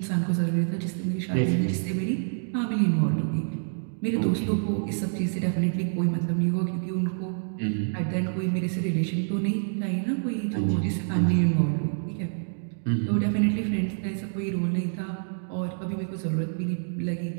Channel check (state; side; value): silent; left; digital silence